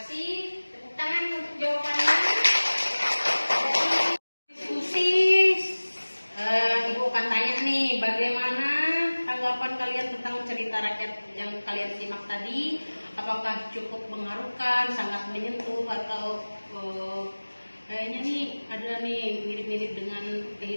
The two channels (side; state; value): both; inverted; correlation -1.00